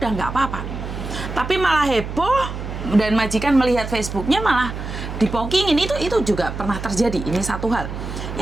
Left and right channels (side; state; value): right; noise; hum, 7 dB below the sound